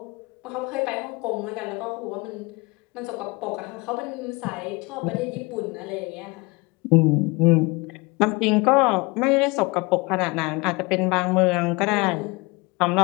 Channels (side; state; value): right; quieter; 26.0 dB